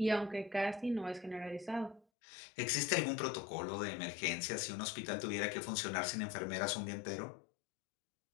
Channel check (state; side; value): drops out; right; at 2.0 s